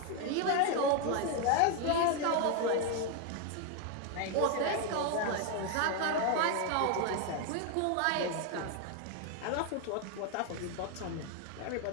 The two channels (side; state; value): both; different; correlation 0.01